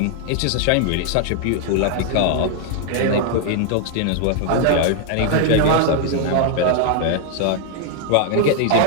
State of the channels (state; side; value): different; both; correlation 0.00